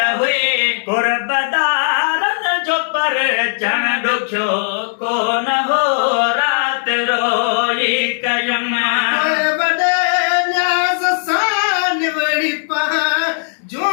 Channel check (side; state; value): right; silent; 65 dB below the other